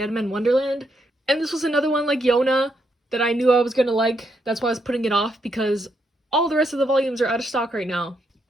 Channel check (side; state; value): both; normal; correlation 0.78